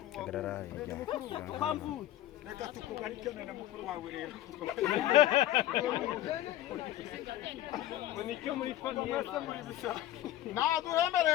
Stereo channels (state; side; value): quieter; right; 13.7 dB